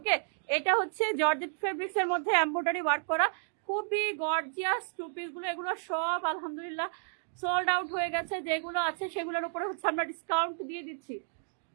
এটা হচ্ছে জর্জেট ফেব্রিক্স এর মধ্যে এমব্রয়ডারি ওয়ার্ক করা খুবই গর্জিয়াস টু পিস গুলো। এগুলো সব আলহামদুলিল্লাহ সোল্ড আউট হয়ে গেছে। যেগুলো আছে সেগুলোর উপরে হচ্ছে আমরা ডিসকাউন্ট দিয়ে দিচ্ছি।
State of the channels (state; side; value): silent; left; digital silence